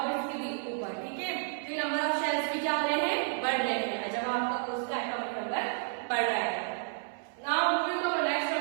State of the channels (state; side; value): silent; left; 57 dB below the other